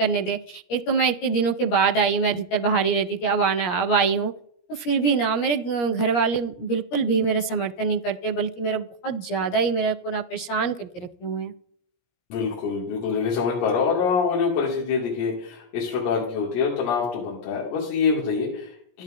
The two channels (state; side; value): late; right; 17 ms